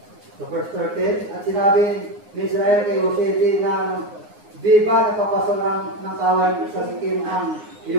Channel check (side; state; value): left; late; 9.6 ms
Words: Sa verse 13, at sinabi ni Israel kay Jose, di ba nagpapastol ng kawan sa Sikim ang